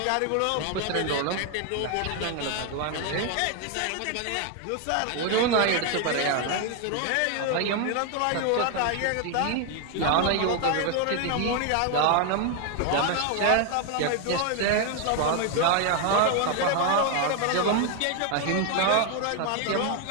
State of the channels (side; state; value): both; different; correlation 0.01